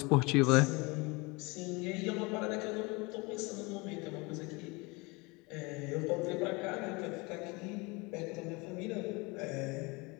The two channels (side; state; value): right; quieter; 26.5 dB